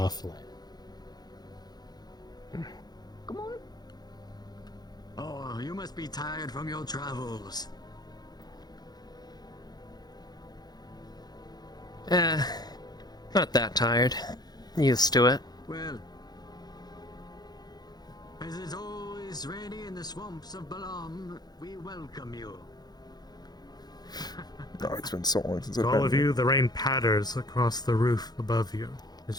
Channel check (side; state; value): right; late; 0.19 ms